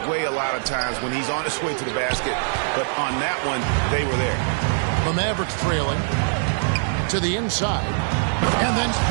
way a lot of times when he's on his way to the basket. But on that one, they were there. The Mavericks trailing to the inside. And then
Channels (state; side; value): silent; left; 60 dB below the other